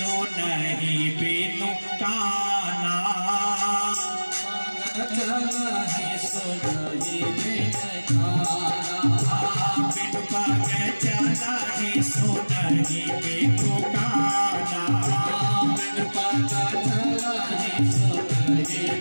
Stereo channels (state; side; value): inverted; both; correlation -1.00